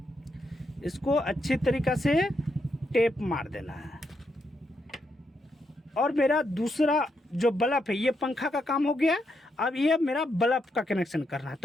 इसको अच्छी तरीक़ा से टेप मार देना है। और मेरा दूसरा जो बल्ब है, ये पंखा का काम हो गया। अब ये मेरा बल्ब का कनेक्शन करना है,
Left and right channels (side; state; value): both; normal; correlation 0.80